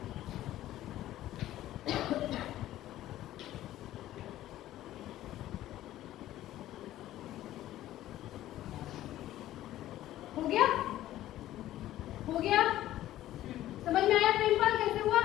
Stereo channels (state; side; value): quieter; right; 14.0 dB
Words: हो गया समझ में आया प्रेमपाल कैसे हुआ